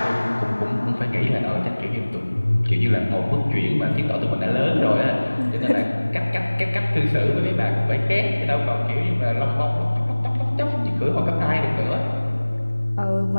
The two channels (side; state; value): both; inverted; correlation -1.00